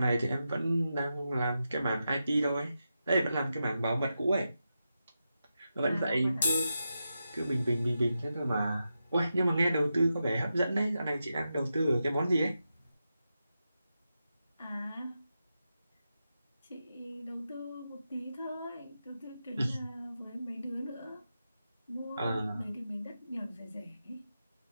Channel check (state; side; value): inverted; both; correlation -0.89